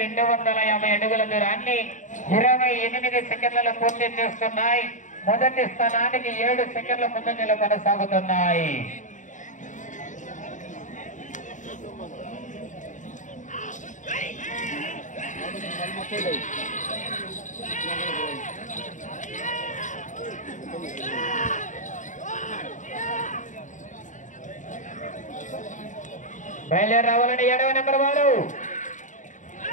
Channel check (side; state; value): right; late; 0.36 ms